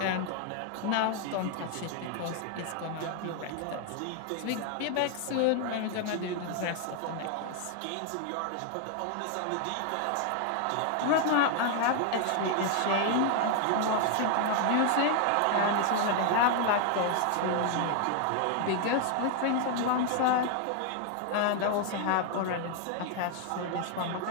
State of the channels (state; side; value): different; both; correlation 0.00